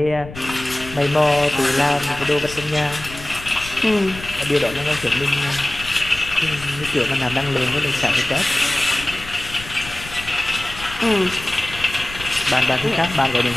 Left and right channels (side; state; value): left; noise; rumble, 14 dB below the sound